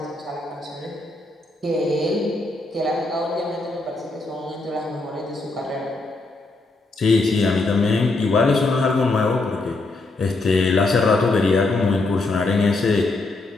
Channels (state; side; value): quieter; right; 3.2 dB